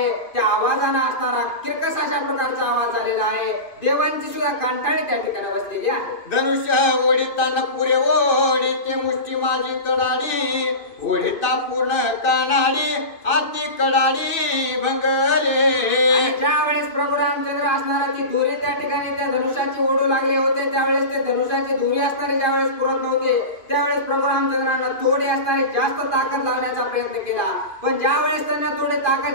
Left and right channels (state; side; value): late; right; 2.5 ms